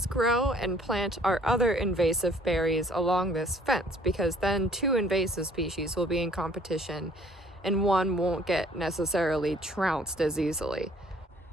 grow and plant our other invasive berries along this fence, because then 2 invasive species will be in competition and one won't get necessarily trounced as easily.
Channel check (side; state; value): both; normal; correlation 0.57